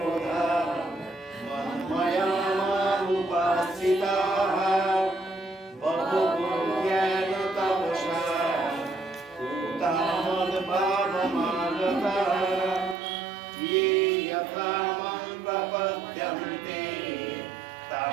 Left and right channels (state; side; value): drops out; left; at 13.0 s